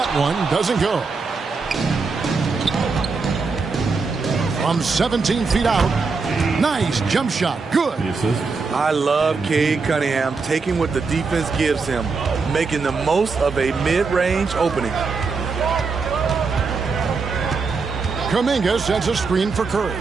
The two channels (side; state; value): left; quieter; 4.6 dB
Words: one doesn't go. From 17 feet out. Nice jump shot. Good. I love Cade Cunningham taking what the defense gives him, making the most of a mid-range opening. Kuminga sends a screen for Curry.